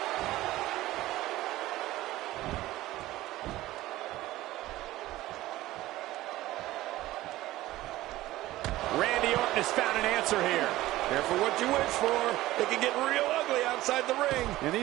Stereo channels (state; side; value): quieter; left; 16.5 dB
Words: Randy Orton has found an answer here. Careful what you wish for. It can get real ugly outside the ring. And